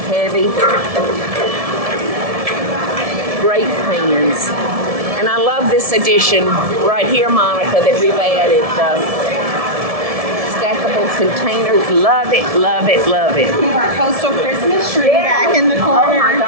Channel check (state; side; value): late; left; 1.7 ms